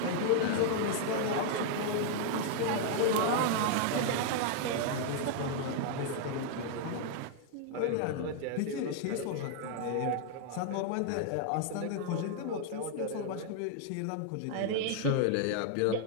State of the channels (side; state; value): both; different; correlation 0.00